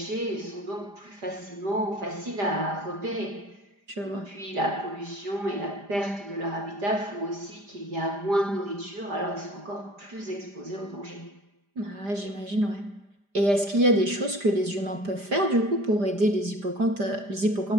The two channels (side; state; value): left; late; 5.0 ms